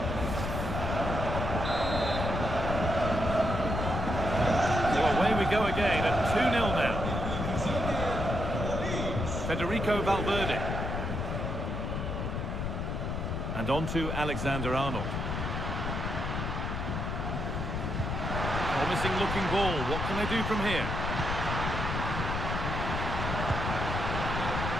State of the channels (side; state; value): left; noise; rumble, 2 dB below the sound